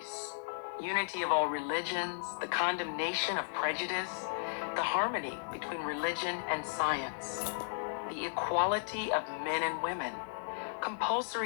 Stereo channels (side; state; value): right; silent; digital silence